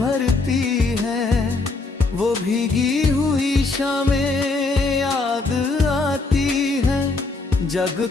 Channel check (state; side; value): quieter; right; 3.6 dB